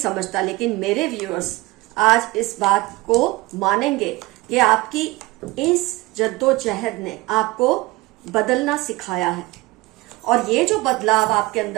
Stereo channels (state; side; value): quieter; left; 21.3 dB